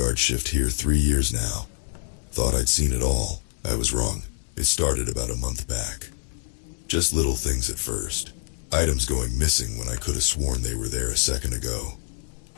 shift here 3 years now. Thought I'd seen it all. I was wrong. It started about a month back. Just little things at first. Items going missing when I could have sworn they were there a second ago.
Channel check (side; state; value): right; silent; 61 dB below the other